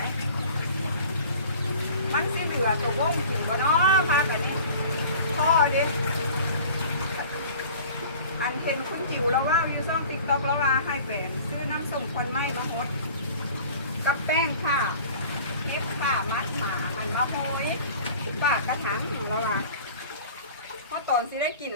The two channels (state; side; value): inverted; both; correlation -0.44